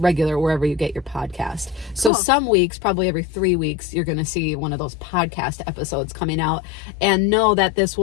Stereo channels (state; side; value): drops out; right; at 2.1 s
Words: wherever you get your podcast. So some weeks, probably every 3 weeks, you're going to see one of those podcast episodes coming out, and know that this